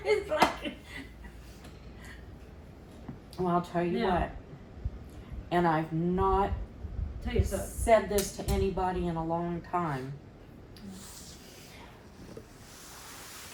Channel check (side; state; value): both; identical; correlation 1.00